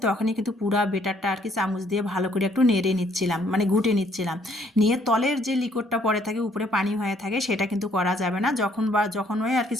তখনই কিন্তু পুরা বেটারটা আর কি চামচ দিয়ে ভালো করে একটু নেড়ে নিচ্ছিলাম, মানে ঘুটে নিচ্ছিলাম। নিয়ে তলের যে লিকোডটা পড়ে থাকে উপরে পানি হয়ে থাকে সেটা কিন্তু করা যাবে না। যখনই আর কি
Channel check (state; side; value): normal; both; correlation 0.65